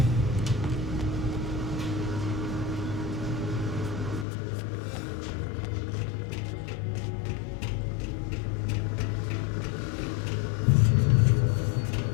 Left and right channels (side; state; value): right; drops out; at 4.2 s